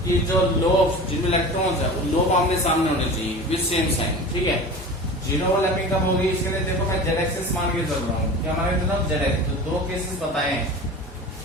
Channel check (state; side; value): normal; both; correlation 0.35